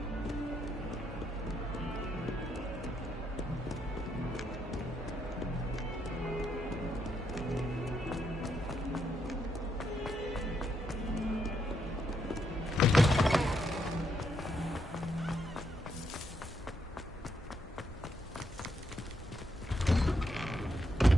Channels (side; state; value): both; normal; correlation 0.78